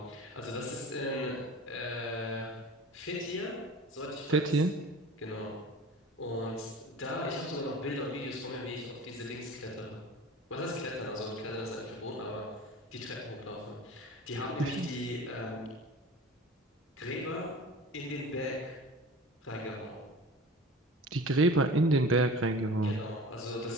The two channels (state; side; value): normal; both; correlation 0.38